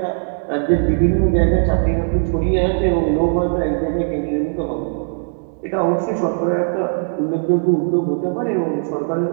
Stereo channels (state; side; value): silent; left; digital silence